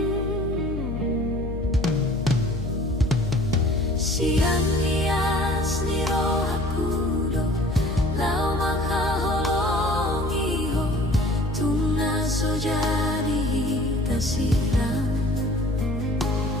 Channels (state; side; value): noise; left; hum, 4 dB below the sound